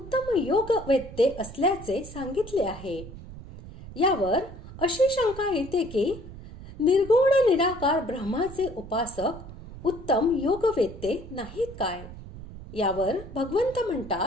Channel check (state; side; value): noise; right; rumble, 14 dB below the sound